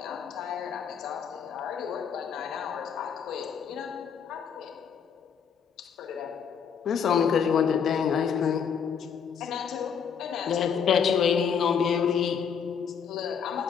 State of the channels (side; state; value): right; quieter; 7.1 dB